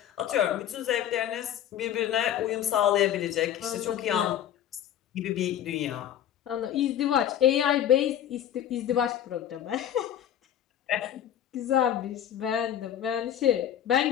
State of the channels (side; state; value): right; quieter; 10.6 dB